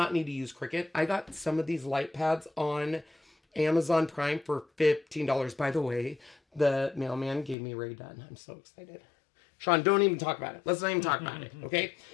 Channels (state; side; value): drops out; right; at 7.6 s